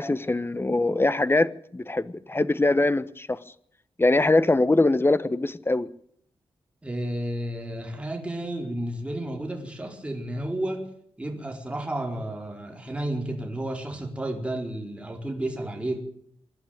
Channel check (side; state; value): both; normal; correlation 0.90